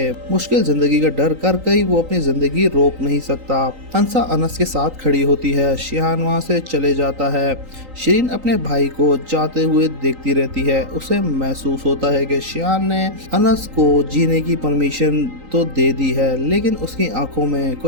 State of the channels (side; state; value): left; late; 3.9 ms